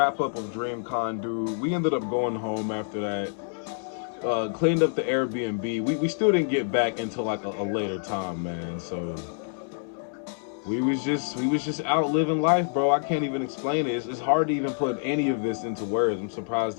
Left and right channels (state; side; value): silent; right; 60 dB below the other